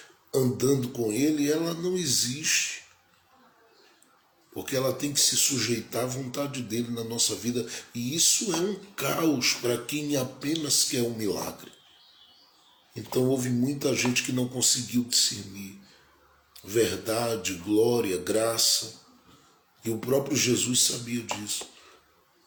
andando com ele, ela não existe. Porque ela tem que se sujeitar à vontade dele na nossa vida. E isso é um caos para quem apenas quer um milagre. Então houve muita gente que não conseguiu discernir verdade, glória, graça. E o próprio Jesus sabia disso.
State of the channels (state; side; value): identical; both; correlation 1.00